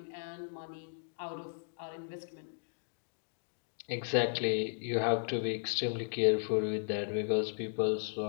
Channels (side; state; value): right; silent; digital silence